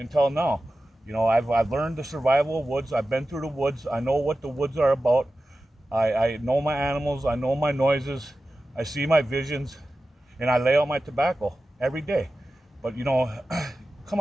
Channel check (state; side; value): normal; both; correlation 0.94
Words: learned the survival of woods. I've been through the woods. I know what the woods are about. I know my animals. I know my noises. I see my visions, and I lay out my tobacco every day. But come